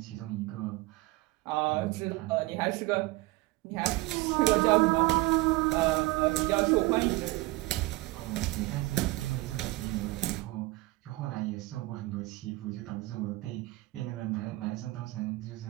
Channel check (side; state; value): left; quieter; 20.9 dB